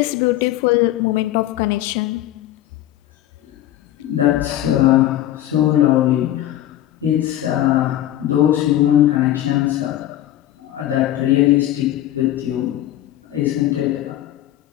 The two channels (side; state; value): right; quieter; 13.3 dB